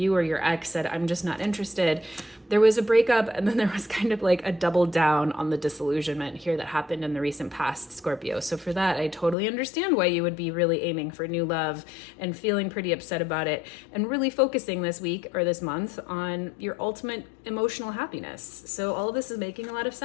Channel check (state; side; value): drops out; right; at 9.3 s